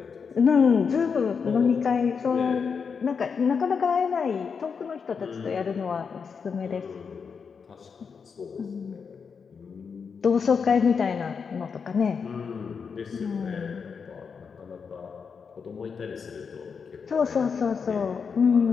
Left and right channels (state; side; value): quieter; right; 5.9 dB